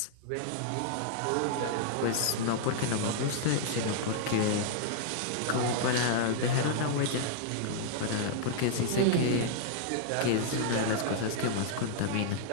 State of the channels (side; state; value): both; different; correlation -0.01